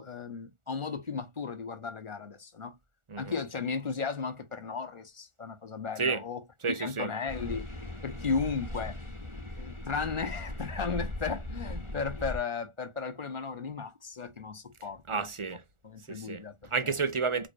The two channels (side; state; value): left; late; 1.4 ms